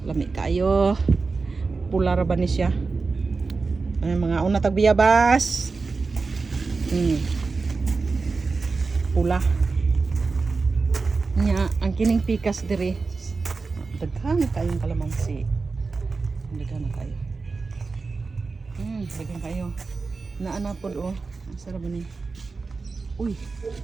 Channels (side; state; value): left; quieter; 4.2 dB